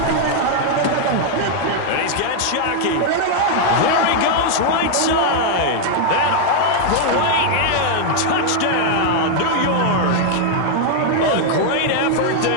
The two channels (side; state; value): both; different; correlation 0.00